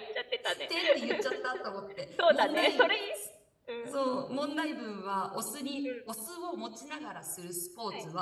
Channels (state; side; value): identical; both; correlation 1.00